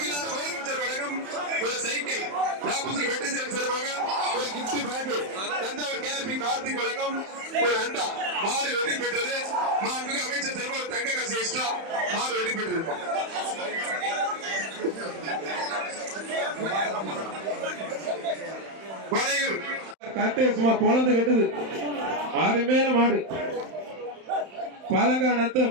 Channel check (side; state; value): left; late; 31 ms